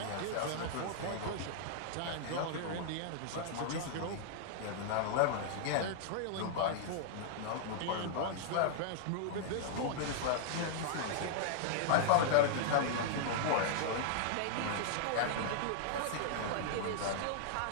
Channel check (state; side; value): different; both; correlation -0.01